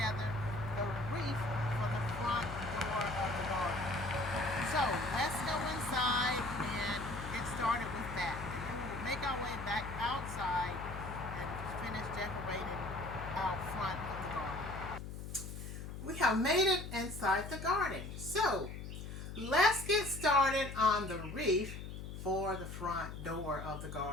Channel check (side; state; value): left; noise; hum, 8 dB below the sound